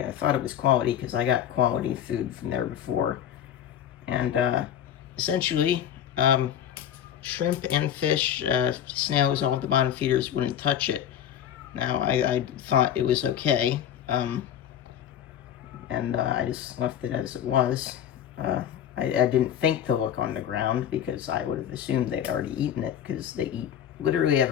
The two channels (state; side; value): quieter; right; 9.9 dB